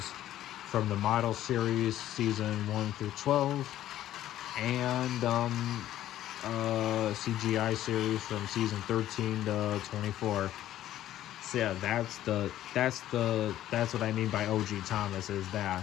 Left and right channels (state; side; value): quieter; right; 12.8 dB